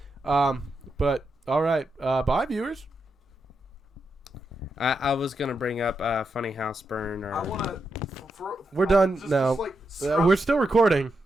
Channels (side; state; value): both; normal; correlation 0.85